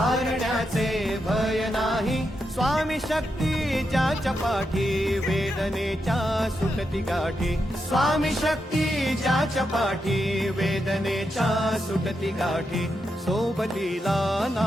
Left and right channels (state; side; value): normal; both; correlation 0.85